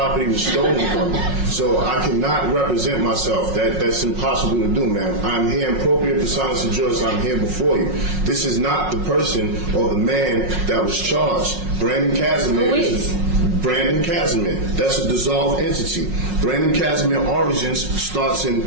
was stolen from me, so I cannot represent myself. That's impossible to do, man. I'm here in appropriate personas of juris. I'm here before you. This is not the person or the man that was charged. Brandon Casimir is Brandon Casimir. That's a dissolved entity. Brandon Casimir origins starts in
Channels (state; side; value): late; left; 5.5 ms